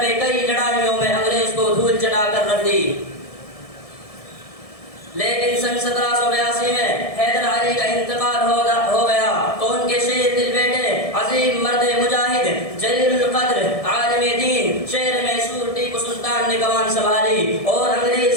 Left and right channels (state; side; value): late; right; 1.7 ms